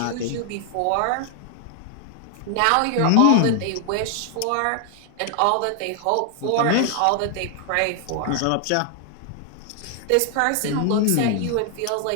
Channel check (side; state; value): both; different; correlation 0.00